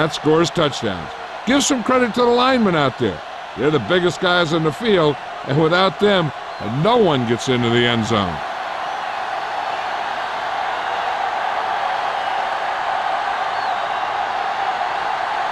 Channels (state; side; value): identical; both; correlation 1.00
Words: scores touchdowns. Give some credit to the linemen out there. They're the biggest guys on the field, and without them, no one gets into the end zone.